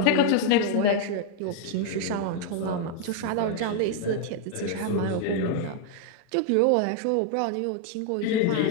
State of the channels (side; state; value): both; different; correlation 0.00